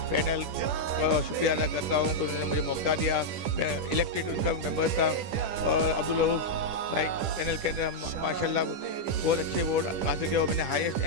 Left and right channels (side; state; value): left; late; 10 ms